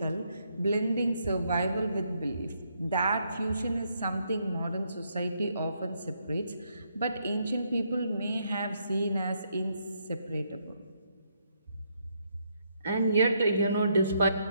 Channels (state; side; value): inverted; both; correlation -0.75